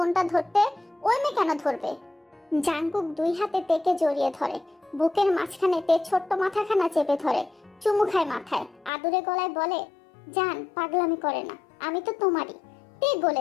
ধরতে, ওই মেয়ে কেন ধরবে? জাঙ্কুক দুই হাতে তেকে জড়িয়ে ধরে, বুকের মাঝখানে তে ছোট্ট মাথাখানা চেপে ধরে, চুমু খায় মাথায়, আদুরে গলায় বলে, জান পাগলামি করে না, আমি তো তোমারই। তে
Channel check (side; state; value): right; drops out; at 8.9 s